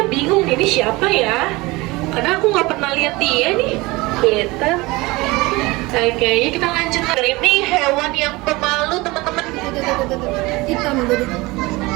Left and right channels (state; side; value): quieter; left; 22.2 dB